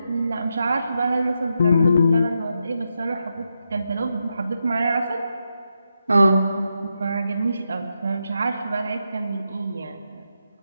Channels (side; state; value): both; inverted; correlation -0.85